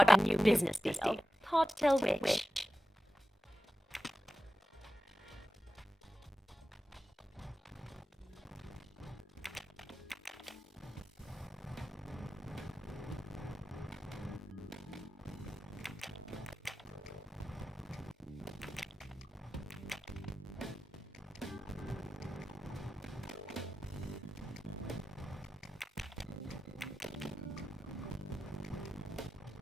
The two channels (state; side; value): normal; both; correlation 0.93